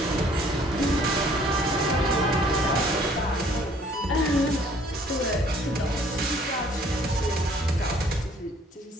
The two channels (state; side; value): normal; both; correlation 0.58